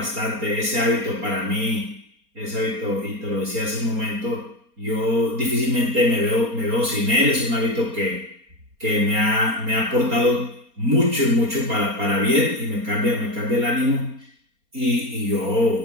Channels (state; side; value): late; left; 4.3 ms